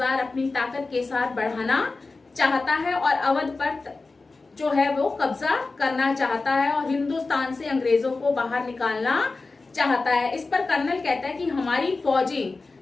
अपनी ताकत के साथ बढ़ाना चाहता है और अवध पर जो है वो कब्जा करना चाहता है और हिंदुस्तान से अंग्रेजों को बाहर निकालना चाहता है। इस पर कर्नल कहता है कि हमारी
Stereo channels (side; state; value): right; quieter; 3.7 dB